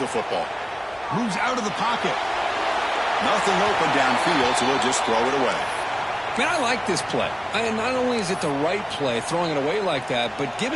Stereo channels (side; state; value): both; identical; correlation 1.00